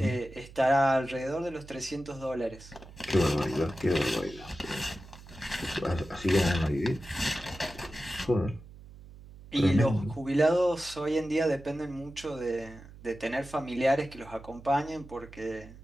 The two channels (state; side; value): noise; right; hum, 18 dB below the sound